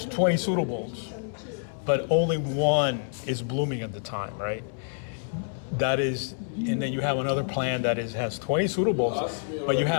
but only one is blooming at the time, right? That is, and then you have another plant that has 20 pseudobulbs, but you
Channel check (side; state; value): right; silent; 60 dB below the other